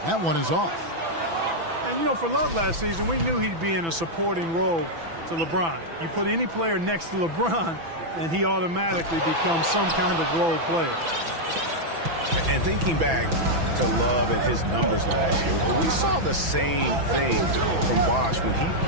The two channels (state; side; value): late; left; 6.0 ms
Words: That one is off. And, you know, for Love last season, we knew he'd be in a supporting role to LeBron. You put any player next to LeBron, and he automatically becomes some kind of role player. And thinking back to Love and his numbers last year, we saw the same thing from Bosh when he